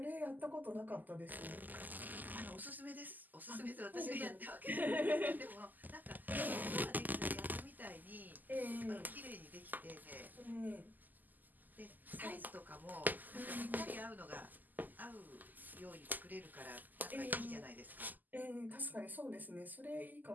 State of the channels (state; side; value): late; left; 0.084 ms